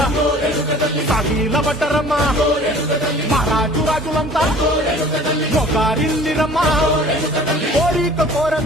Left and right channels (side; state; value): both; normal; correlation 0.48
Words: సాగిల పడ్డరమ్మా మహారాజు రాజులంతా మొగారిందిరమ్మా కోరిక